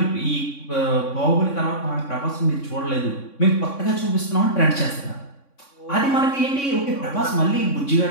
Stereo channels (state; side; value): late; right; 3.6 ms